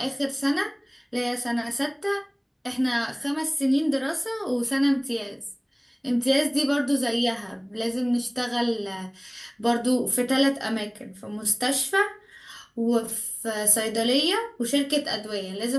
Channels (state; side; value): identical; both; correlation 1.00